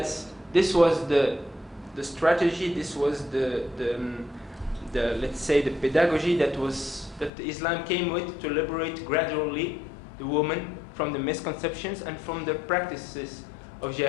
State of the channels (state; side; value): drops out; right; at 7.3 s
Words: this was the strategy, this was the let's say the pedagogy that Islam came with to liberate gradually the woman from the misconceptions and from the practices of